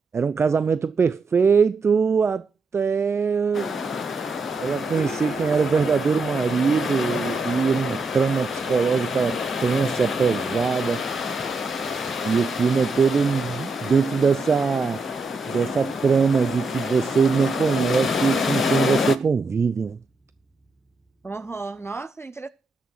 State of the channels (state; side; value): quieter; left; 3.5 dB